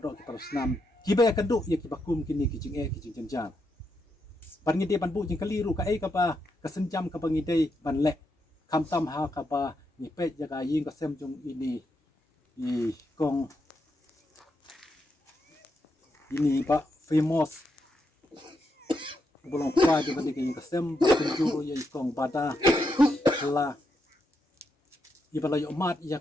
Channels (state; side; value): normal; both; correlation 0.82